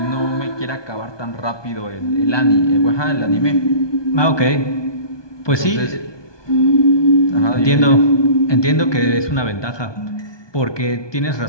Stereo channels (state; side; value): late; right; 1.2 ms